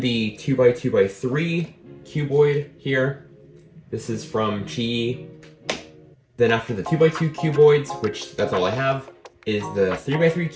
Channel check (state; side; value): identical; both; correlation 1.00